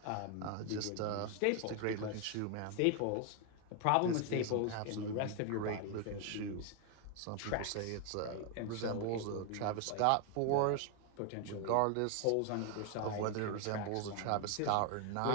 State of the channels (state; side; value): different; both; correlation 0.01